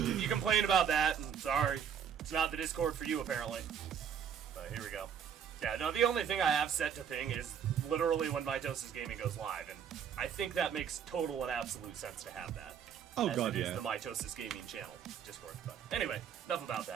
you complain about that, I'm sorry. It's not the Discord for you apparently. But here we go. Yeah, no, the only thing I have set to ping is literally when Mitosis Gaming goes live, and I think that makes total and absolute sense to have that. Oh as god, it is the Mitosis Gaming channel Discord. But anyway, enough about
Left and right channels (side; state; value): left; quieter; 8.1 dB